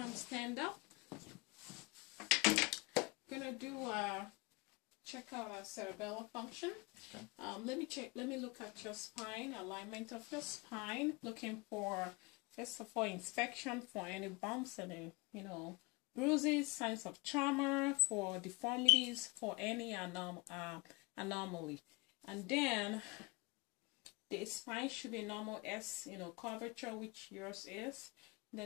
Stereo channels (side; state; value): right; quieter; 26.3 dB